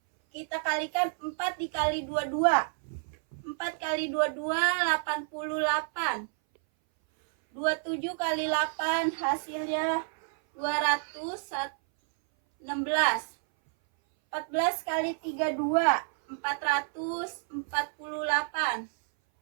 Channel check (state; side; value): silent; left; 58 dB below the other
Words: kita kalikan 4 dikali 22. 4 kali 22, 88. 27 kali 8, hasilnya 216. 14 kali 32, 448.